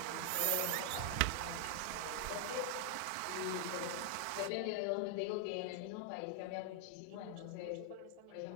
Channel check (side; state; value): both; different; correlation 0.00